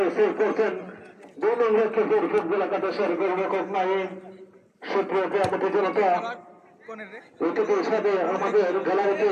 সেভ করছেন 2 নং লক্ষ্মীপুর ফুটবল একাদশের গোলরক্ষক নাইম। সুপ্রিয় ক্রীড়াপতি জনতা, অতিথির সাথে আমাদের গ্যালারিতে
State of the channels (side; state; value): both; identical; correlation 1.00